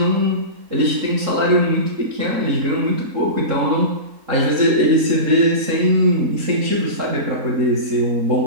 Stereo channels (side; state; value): left; late; 3.9 ms